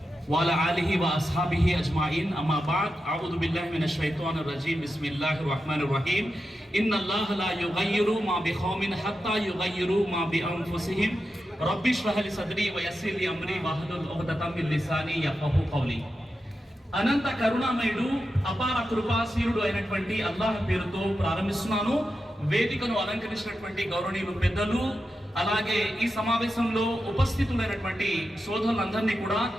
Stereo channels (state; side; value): normal; both; correlation 0.89